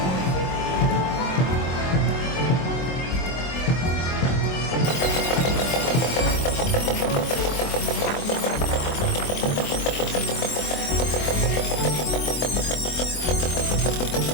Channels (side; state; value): right; late; 24 ms